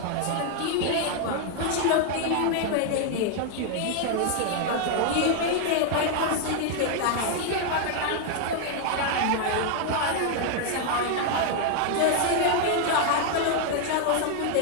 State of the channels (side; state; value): both; different; correlation 0.00